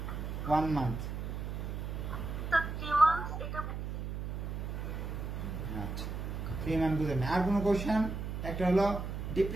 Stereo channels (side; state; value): right; noise; hum, 5 dB below the sound